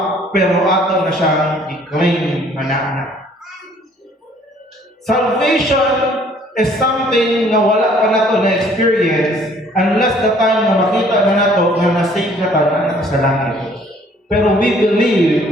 pero ato na siyang i-claim na. Salvation is something na wala pa nato na experience unless the time na makita na nato na nasave na tayo na sa langit. Pero we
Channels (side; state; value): both; normal; correlation 0.58